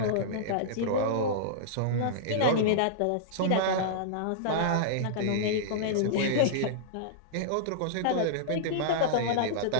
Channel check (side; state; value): both; different; correlation -0.02